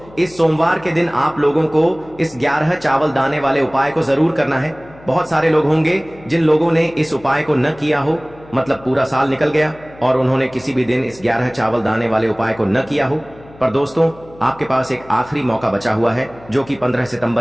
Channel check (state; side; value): noise; left; hum, 22 dB below the sound